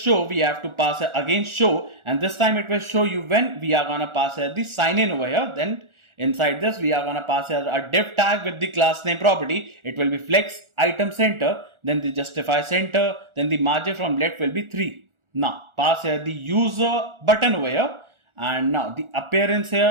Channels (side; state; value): left; late; 1.4 ms